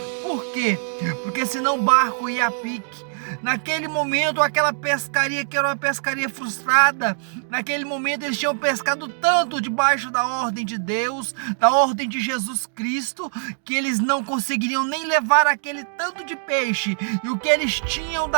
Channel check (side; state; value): left; silent; digital silence